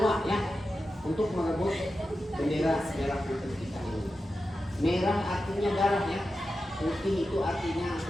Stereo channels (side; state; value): both; normal; correlation 0.91